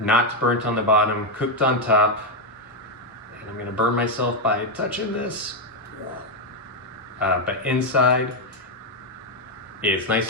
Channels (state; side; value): normal; both; correlation 0.03